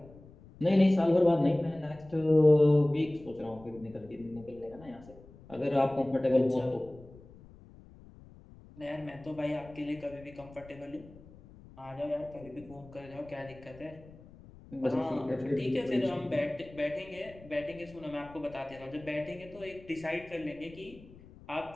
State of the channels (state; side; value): noise; left; rumble, 21 dB below the sound